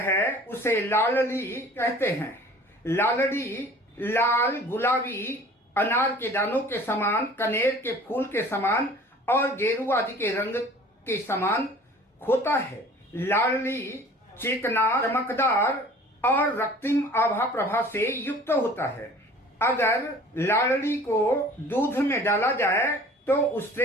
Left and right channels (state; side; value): normal; both; correlation 0.47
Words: उसे लालड़ी कहते हैं। लालड़ी लाल, गुलाबी, अनार के दानों के समान, कनेर के फूल के समान और गेरू आदि के रंग के समान होता है। लालड़ी चिकना, चमकदार और रक्तिम आभा प्रभा से युक्त होता है। अगर लालड़ी को दूध में डाला जाए तो